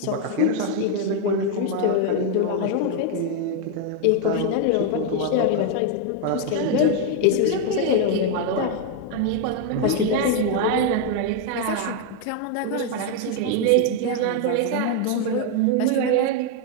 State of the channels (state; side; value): different; both; correlation 0.01